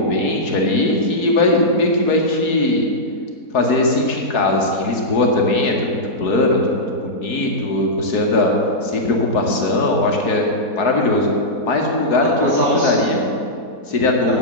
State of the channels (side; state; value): right; late; 4.7 ms